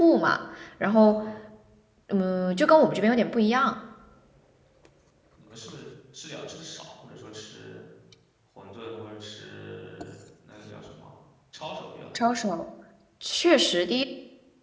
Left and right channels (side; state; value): both; identical; correlation 1.00